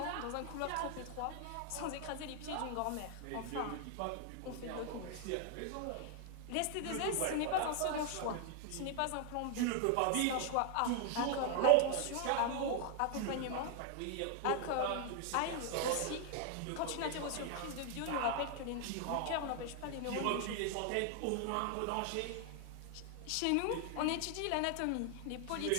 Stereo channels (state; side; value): different; both; correlation 0.00